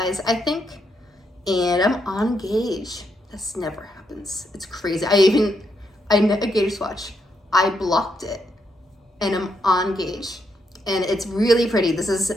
I think, and I'm on gauge. This never happens. It's crazy. I knit a gauge swatch. I blocked it, and I'm on gauge, and it's really pretty. This is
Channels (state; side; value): normal; both; correlation 0.78